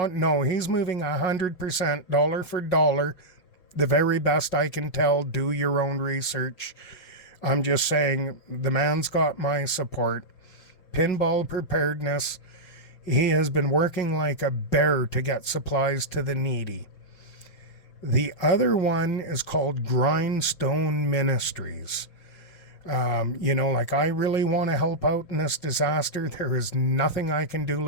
No, he's moving 100%, dollar for dollar. The very best I can tell. Do your own research. I'm just saying, the man's got my support. Pinball Preparedness. He has been working like a bear to get supplies to the needy. The other one is called Grindstone Ministries. I really want to help out in this disaster. There is nothing I can do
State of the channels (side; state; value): right; late; 5.8 ms